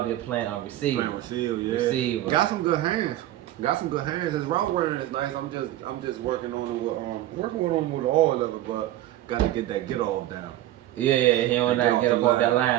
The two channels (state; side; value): quieter; left; 14.3 dB